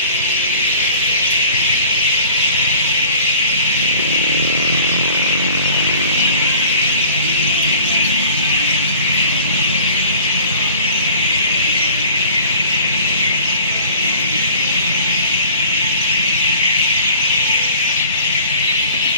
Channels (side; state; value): both; inverted; correlation -0.46